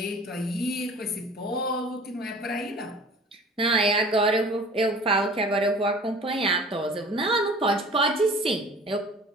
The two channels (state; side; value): normal; both; correlation 0.45